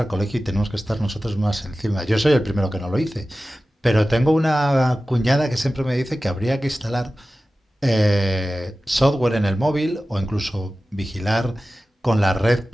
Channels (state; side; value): normal; both; correlation 0.95